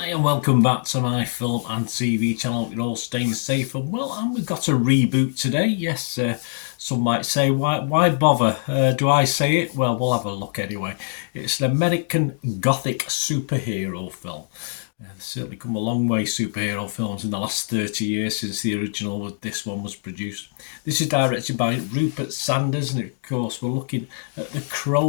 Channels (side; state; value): right; silent; digital silence